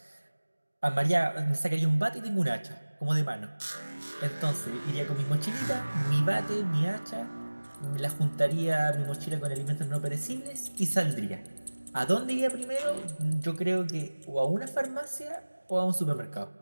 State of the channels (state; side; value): inverted; both; correlation -1.00